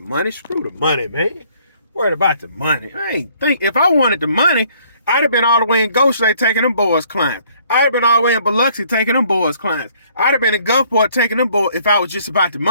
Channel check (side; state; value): both; inverted; correlation -0.62